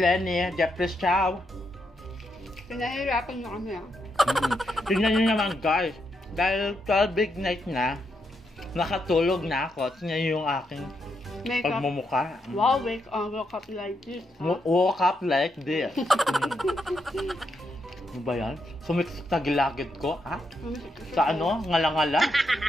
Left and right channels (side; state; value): both; normal; correlation 0.81